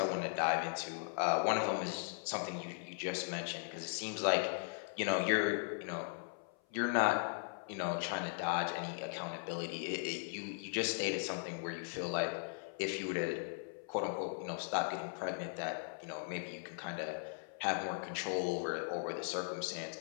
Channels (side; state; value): right; silent; 52 dB below the other